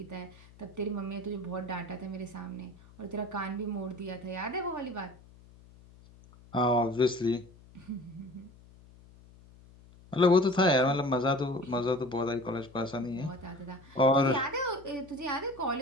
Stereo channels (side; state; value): left; noise; hum, 23 dB below the sound